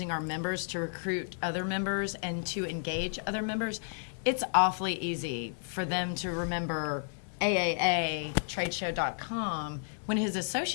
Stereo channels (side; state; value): right; silent; digital silence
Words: our members to recruit other members and to engage other members, it's awfully easy for them to remember AAAtradeshow.com when his